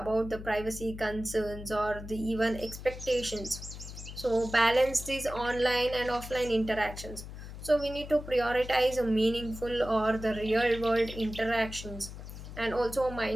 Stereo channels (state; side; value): noise; left; hum, 11 dB below the sound